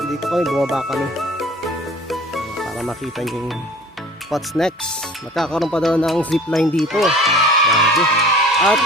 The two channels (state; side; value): normal; both; correlation 0.46